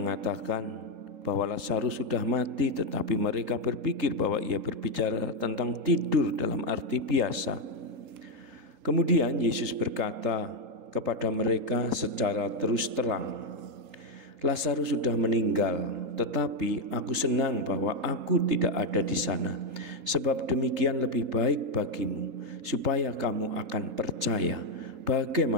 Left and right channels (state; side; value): late; left; 3.8 ms